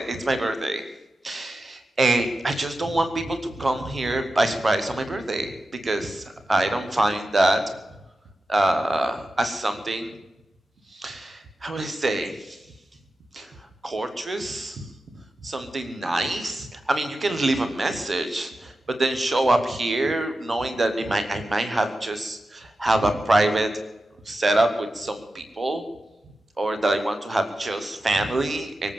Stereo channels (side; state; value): both; normal; correlation 0.92